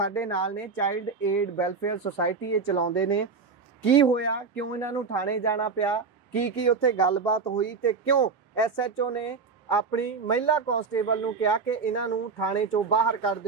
ਨਾਲ ਨੇ ਚਾਈਲਡ ਏਡ ਵੈਲਫੇਅਰ ਸੁਸਾਇਟੀ ਇਹ ਚਲਾਉਂਦੇ ਨੇ ਕੀ ਹੋਇਆ ਕਿਉਂ ਇਹਨਾਂ ਨੂੰ ਥਾਣੇ ਜਾਣਾ ਪਿਆ ਕੀ ਉੱਥੇ ਗੱਲਬਾਤ ਹੋਈ ਤੇ ਕਿਉਂ ਐਸਐਚਓ ਨੇ ਆਪਣੀ ਮਹਿਲਾ ਕਾਂਸਟੇਬਲ ਨੂੰ ਕਿਹਾ ਕਿ ਇਹਨਾਂ ਨੂੰ ਥਾਣੇ ਚੋਂ ਬਾਹਰ ਕੱਢ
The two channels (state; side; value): quieter; left; 4.9 dB